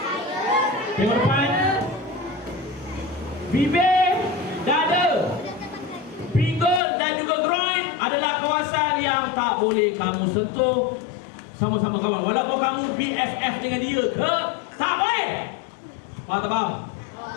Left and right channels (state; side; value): drops out; right; at 6.8 s